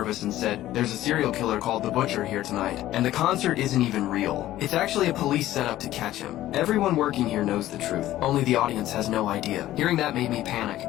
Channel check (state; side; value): quieter; right; 14.4 dB